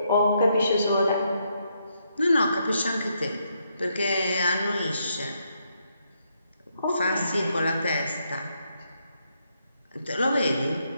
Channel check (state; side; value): inverted; both; correlation -0.77